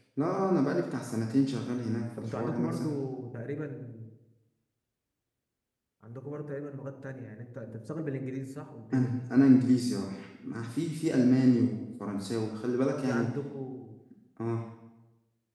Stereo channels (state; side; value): identical; both; correlation 1.00